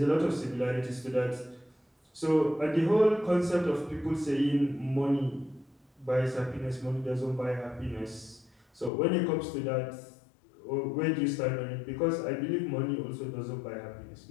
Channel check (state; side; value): drops out; right; at 8.9 s